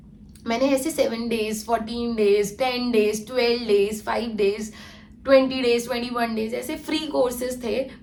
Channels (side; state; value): both; identical; correlation 1.00